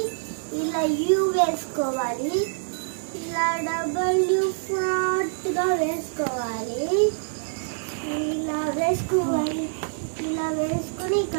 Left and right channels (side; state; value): left; silent; digital silence